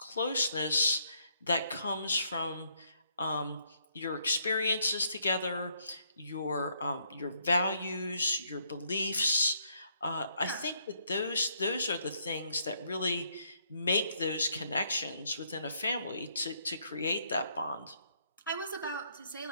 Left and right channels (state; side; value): inverted; both; correlation -0.71